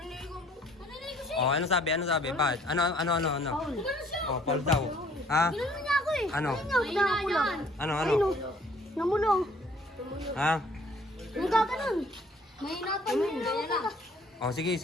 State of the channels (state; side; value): normal; both; correlation 0.58